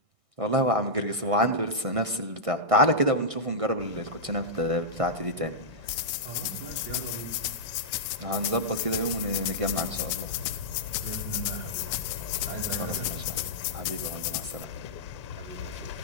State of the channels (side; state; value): left; late; 1.6 ms